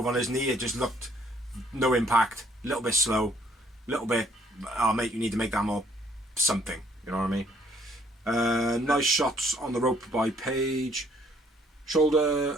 on his knee. It just looked no impact, a little bit slow, a little bit, oh mate, you need to make that more something, you know what I mean? Nice shots on the rope by Page.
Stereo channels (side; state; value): both; normal; correlation 0.64